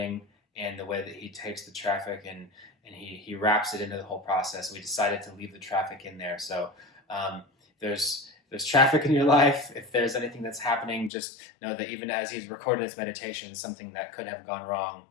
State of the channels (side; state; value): right; drops out; at 11.1 s